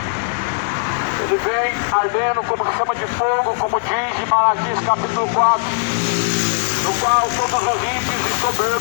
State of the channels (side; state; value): right; silent; 67 dB below the other